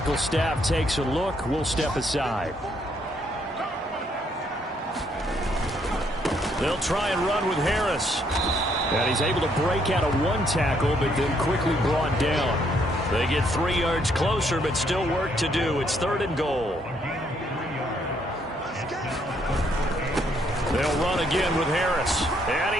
staff takes a look, we'll step aside. They'll try and run with Harris. And he's able to break out of 1 tackle, but then quickly brought down. They get 3 yards closer, but still work to do. It's 3rd and goal. They'll run again with Harris. And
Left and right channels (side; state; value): both; normal; correlation 0.70